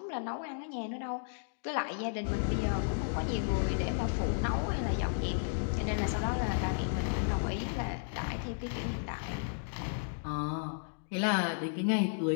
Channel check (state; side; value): silent; right; digital silence